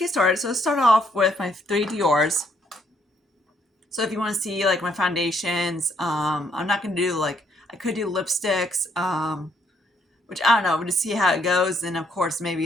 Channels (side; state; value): both; normal; correlation 0.70